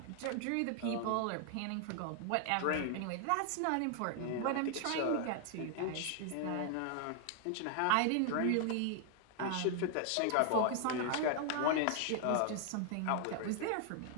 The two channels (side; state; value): both; different; correlation 0.00